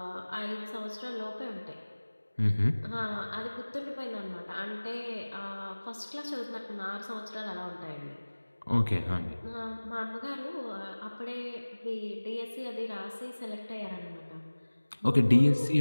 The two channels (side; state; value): both; inverted; correlation -1.00